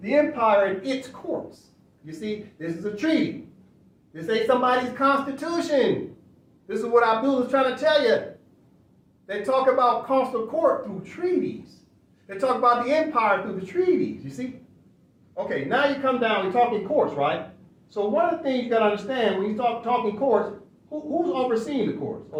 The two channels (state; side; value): identical; both; correlation 1.00